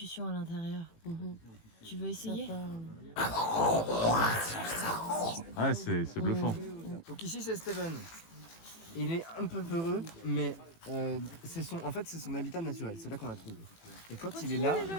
à l'intérieur. Tu veux essayer? Ouais, c'est bluffant. Donc ici c'est Steven. Il est un peu peureux, mais c'est son habitat naturel. C'est là qu'on l'a trouvé. Et quand il est là,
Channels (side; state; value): right; late; 18 ms